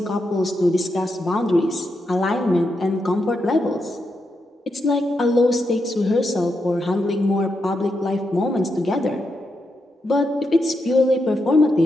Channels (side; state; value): both; normal; correlation 0.84